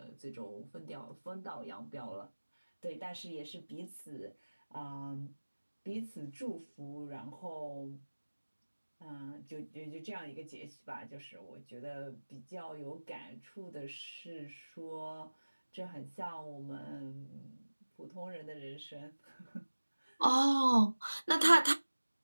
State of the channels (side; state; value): both; inverted; correlation -1.00